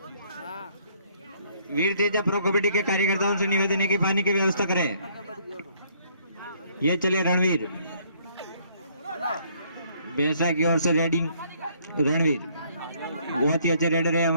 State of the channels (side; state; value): both; inverted; correlation -0.65